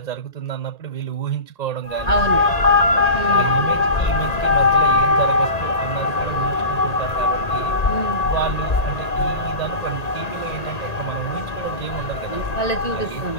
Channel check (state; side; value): late; right; 1.8 ms